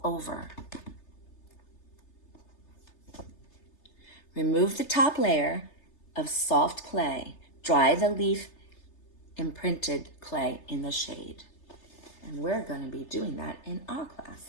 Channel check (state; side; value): late; right; 3.3 ms